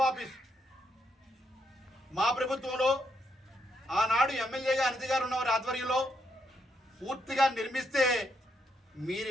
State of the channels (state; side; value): normal; both; correlation 0.78